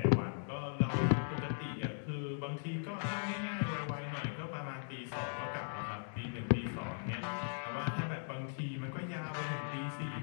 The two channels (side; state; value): right; silent; digital silence